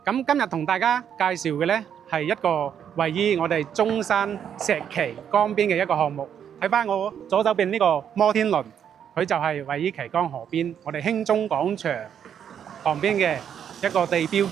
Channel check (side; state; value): left; quieter; 8.7 dB